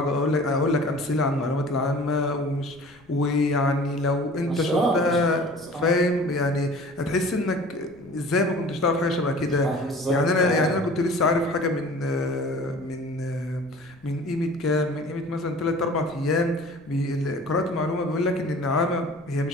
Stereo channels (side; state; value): left; noise; rumble, 29 dB below the sound